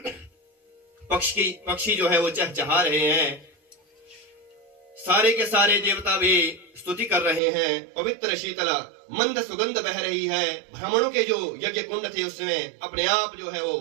पक्षी जो है वो चहचहा रहे हैं। सारे के सारे देवता भी स्तुति कर रहे हैं। पवित्र शीतल मंद सुगंध बह रही है। ब्राह्मणों के जो यज्ञ कुंड थे उसमें अपने आप जो है वो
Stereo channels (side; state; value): left; drops out; at 7.4 s